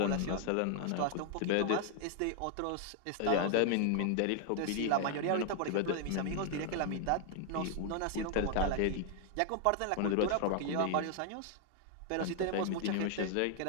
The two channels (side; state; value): both; different; correlation 0.00